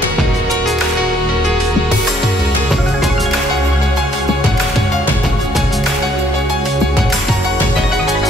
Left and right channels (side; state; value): both; normal; correlation 0.66